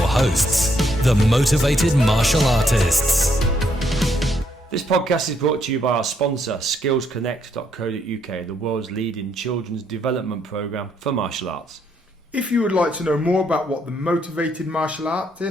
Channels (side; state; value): both; normal; correlation 0.73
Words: hosts, the Motivated Martial Artists. This podcast is brought to you by our sponsor, skillsconnect.co.uk, the world's leading children's development program for martial arts. If you would like to know more about what the Motivated Martial